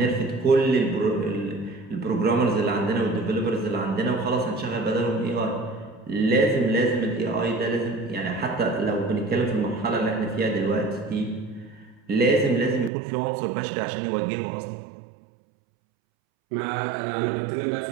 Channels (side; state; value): left; drops out; at 12.9 s